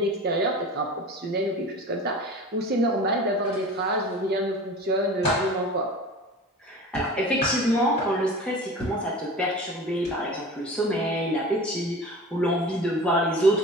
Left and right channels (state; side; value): normal; both; correlation 0.37